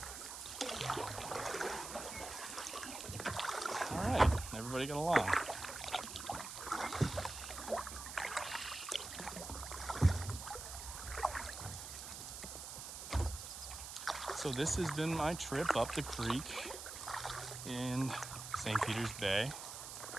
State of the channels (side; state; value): right; noise; hiss, 9 dB below the sound